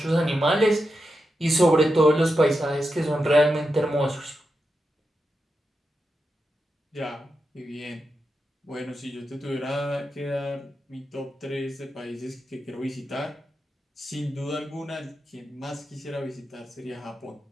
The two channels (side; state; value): both; normal; correlation 0.88